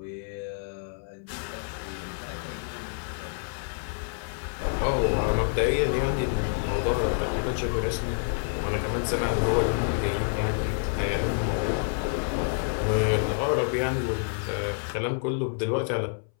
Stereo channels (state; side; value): silent; right; 59 dB below the other